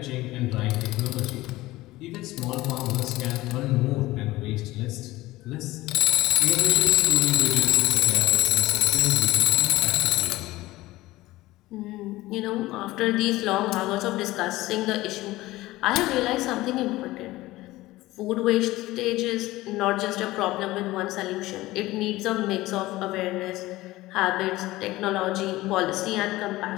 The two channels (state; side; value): quieter; right; 18.1 dB